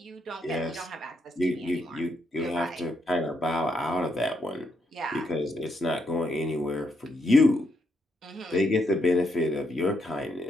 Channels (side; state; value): both; normal; correlation 0.78